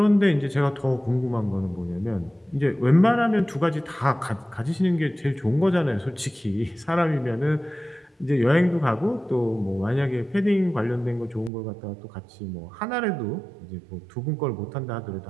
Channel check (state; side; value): drops out; left; at 11.5 s